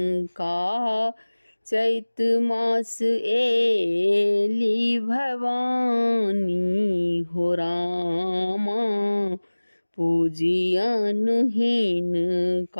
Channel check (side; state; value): both; inverted; correlation -1.00